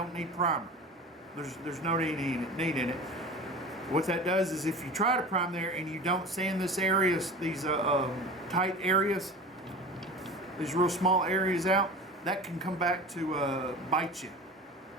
need primer. There's no need in it. What that does is if you try to prime there and you don't sand this areas, these tight areas, these real small areas out, that can come back to bite you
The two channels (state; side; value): normal; both; correlation 0.35